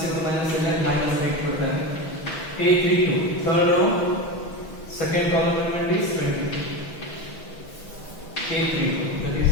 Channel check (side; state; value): right; late; 6.2 ms